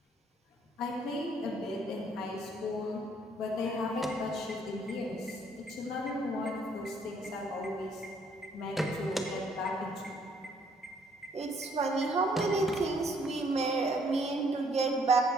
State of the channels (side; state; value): both; normal; correlation 0.65